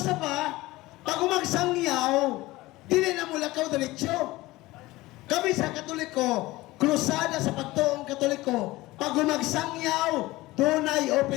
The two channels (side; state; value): right; quieter; 19.2 dB